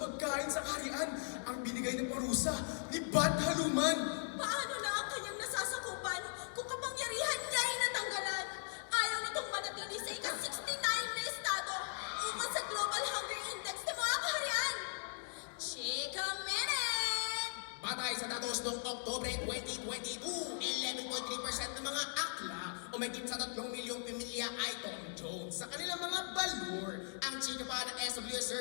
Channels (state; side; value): silent; right; digital silence